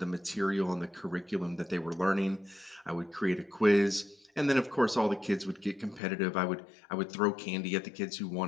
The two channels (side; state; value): right; drops out; at 6.0 s